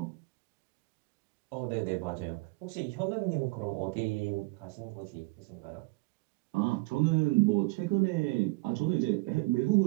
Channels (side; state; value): left; quieter; 25.4 dB